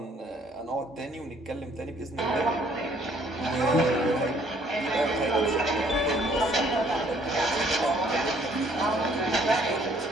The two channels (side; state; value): both; normal; correlation 0.62